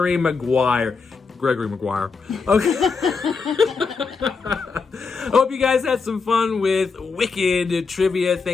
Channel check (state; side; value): quieter; right; 4.9 dB